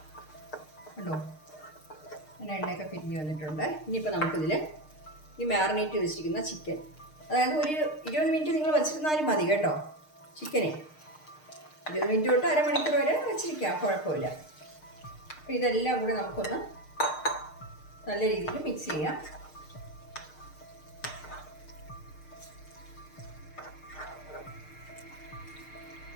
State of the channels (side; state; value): right; late; 6.5 ms